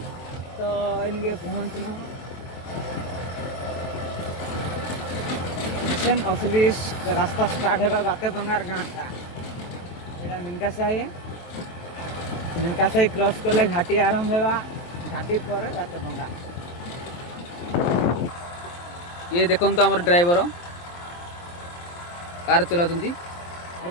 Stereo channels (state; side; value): late; right; 23 ms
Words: तो इनके पहुँचलु असली रास्ता स्टार्ट है बातेपंगार गाँटा एटा मिनका साई क्रॉस कले घाटी आरंभ होगा घाटी पर बातेपंगा ये देखो तो आम ड्राइवर कार चला